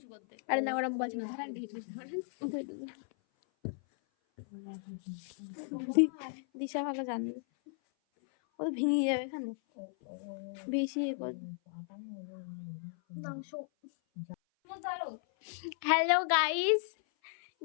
করতে। আরে না, ওরা বলছে না, ধরেন দিশা ভালো জানবে, ও তো ভেঙে যাবে এখানে বেশি। হ্যালো গাইস,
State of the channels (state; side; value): silent; right; 54 dB below the other